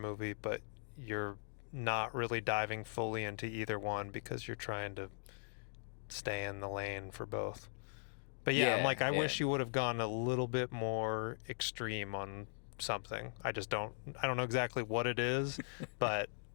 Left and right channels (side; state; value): right; silent; digital silence